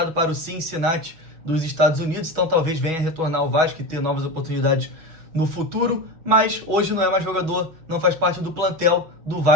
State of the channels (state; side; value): late; left; 6.2 ms